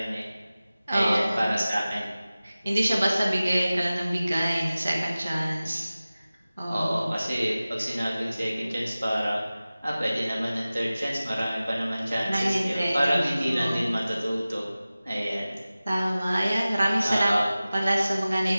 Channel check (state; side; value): inverted; both; correlation -0.97